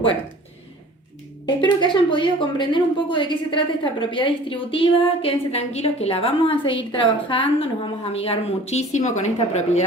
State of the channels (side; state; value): both; normal; correlation 0.46